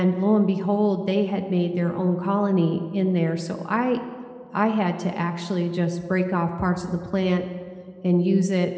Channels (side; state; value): both; identical; correlation 1.00